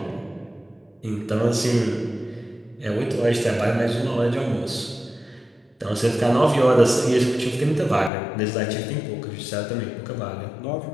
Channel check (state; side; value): drops out; right; at 8.1 s